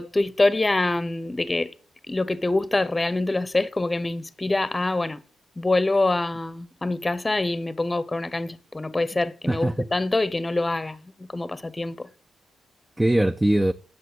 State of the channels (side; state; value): both; normal; correlation 0.98